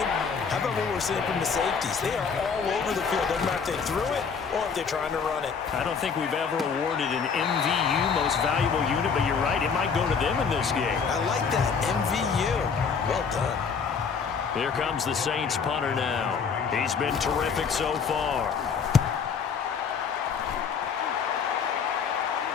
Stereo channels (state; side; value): quieter; right; 6.0 dB